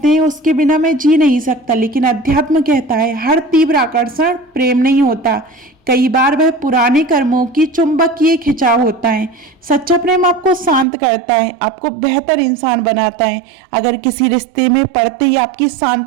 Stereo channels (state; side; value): drops out; left; at 10.9 s